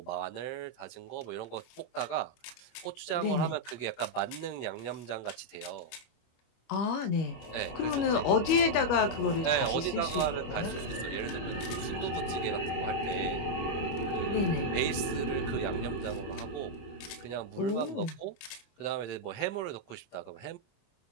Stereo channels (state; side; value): late; right; 25 ms